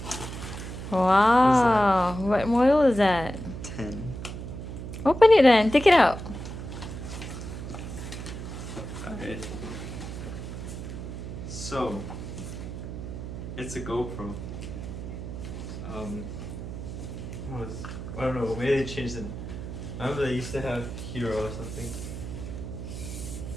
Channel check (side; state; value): right; noise; hum, 8 dB below the sound